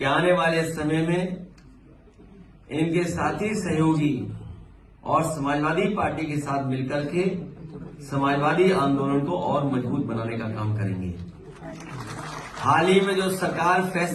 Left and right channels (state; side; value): identical; both; correlation 1.00